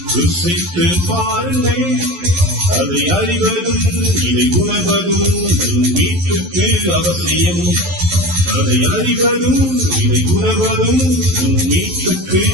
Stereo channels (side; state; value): left; late; 11 ms